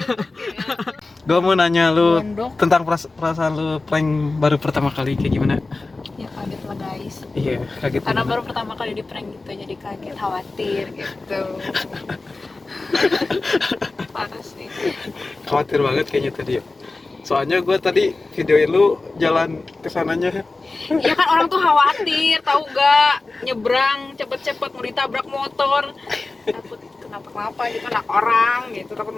ya. Gue mau nanya lu Gondok. tentang perasaan lu prank baru pertama kali kayak gimana? Ya kaget lah guys. Iya, kaget. Karena gimana? baru pertama kali di prank gitu jadi kaget, khawatir gitu. Parah sih. Khawatir banget kayaknya tadi ya. Soalnya gue tadi videoin lu jalan kesananya. Ya kan orang tuh khawatir, tahu gak? Nyebrang cepet-cepet mau ditabrak motor. Takut kenapa-kenapa gitu anak orang gitu, takut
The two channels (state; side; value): quieter; right; 3.4 dB